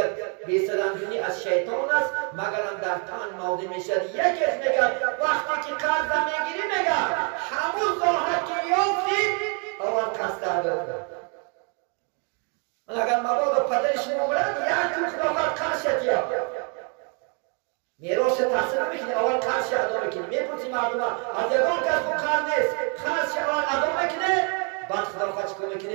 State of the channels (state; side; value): quieter; left; 38.2 dB